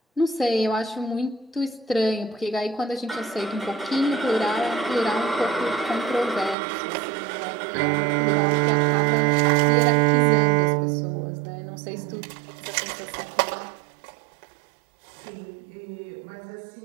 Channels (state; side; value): drops out; left; at 6.6 s